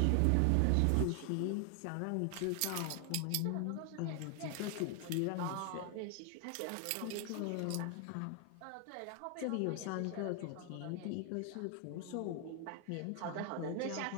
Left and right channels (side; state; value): both; different; correlation 0.00